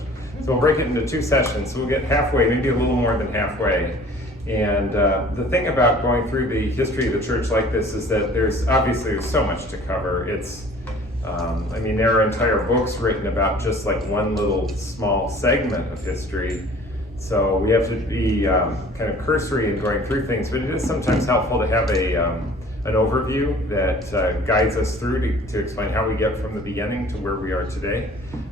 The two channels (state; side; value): normal; both; correlation 0.49